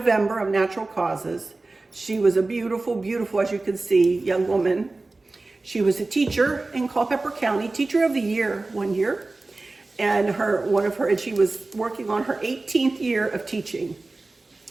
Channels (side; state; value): left; quieter; 3.3 dB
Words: of natural causes. She was a beautiful, beautiful, as you can see, young woman. She was a teacher in Culpeper County, Teacher of the Year one year, and she was working on her 18th year of teaching.